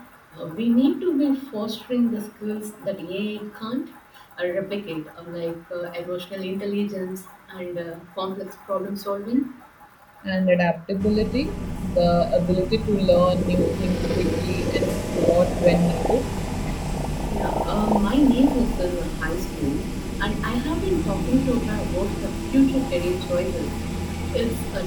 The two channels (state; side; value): identical; both; correlation 1.00